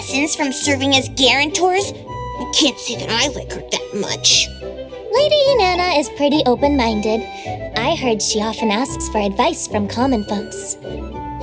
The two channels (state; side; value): identical; both; correlation 1.00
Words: from serving as guarantors, I can't say that I like her that much. Lady Inanna is pretty open-minded. I heard she often asks for advice from common folks.